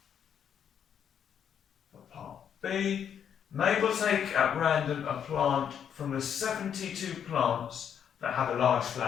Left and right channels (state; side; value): quieter; right; 8.4 dB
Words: For part B, Mabel take at random a plant from the 72 plants that have a large